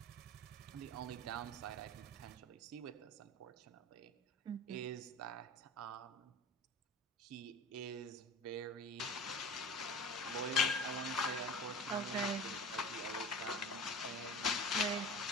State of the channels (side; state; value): both; normal; correlation 0.36